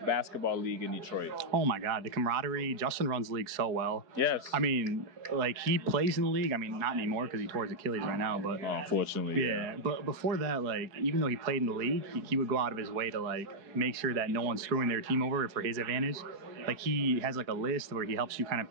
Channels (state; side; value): late; left; 4.7 ms